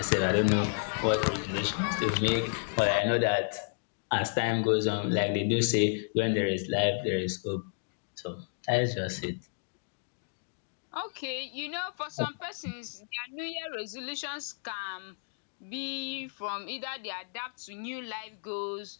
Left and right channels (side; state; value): right; silent; digital silence